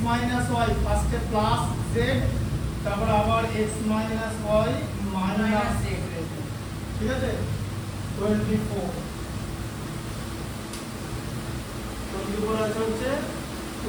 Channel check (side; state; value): both; identical; correlation 1.00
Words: মাইনাস y ফার্স্টে প্লাস z তারপর আবার x minus y minus z ঠিক আছে 24 24 আছে হচ্ছে